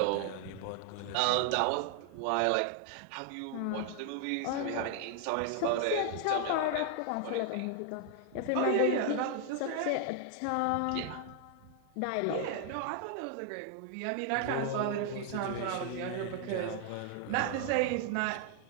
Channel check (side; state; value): both; different; correlation 0.00